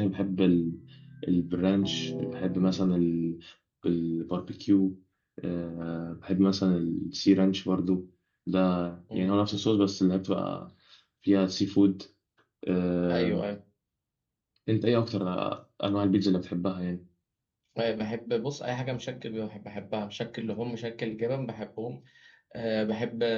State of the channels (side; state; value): both; identical; correlation 1.00